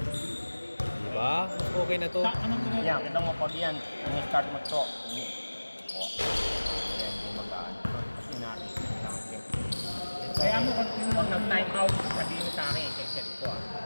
Diba? Okay na to. Yan, kita mo pag yan, ini-start mo to. Ayan, hindi magaan. Kasi narin natin. Kaya mo, pag nag-time out, sabihin mo sa akin, i-set ko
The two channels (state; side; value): inverted; both; correlation -1.00